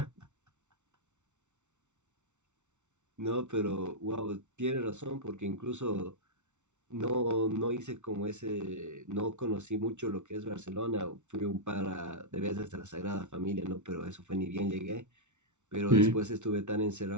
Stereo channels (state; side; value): late; left; 0.83 ms